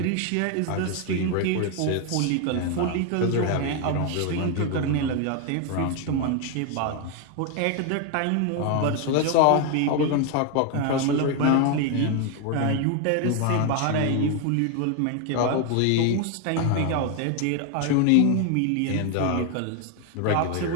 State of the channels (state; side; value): different; both; correlation 0.01